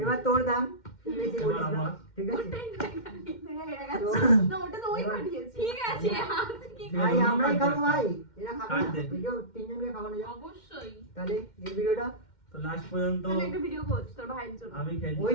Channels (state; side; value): late; right; 2.1 ms